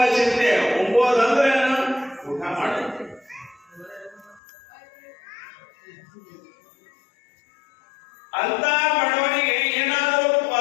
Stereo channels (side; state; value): right; drops out; at 4.4 s